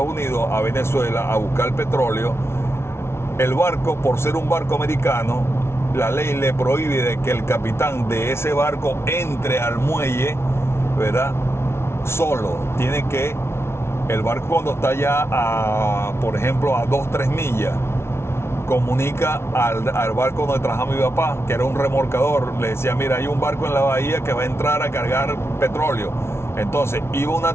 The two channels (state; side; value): late; right; 0.12 ms